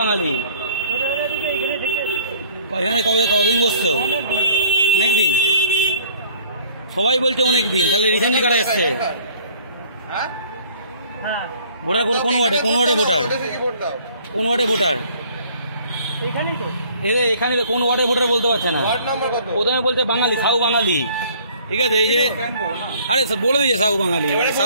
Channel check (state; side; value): inverted; both; correlation -0.55